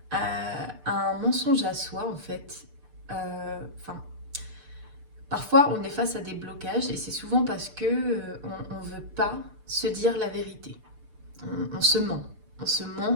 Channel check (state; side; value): late; left; 6.7 ms